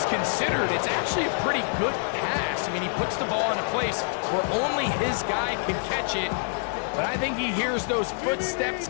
considered, it's actually a pretty good pass. I mean, he puts the ball in a place where only his guy can catch it. But I think he hears those footsteps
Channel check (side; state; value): right; silent; 60 dB below the other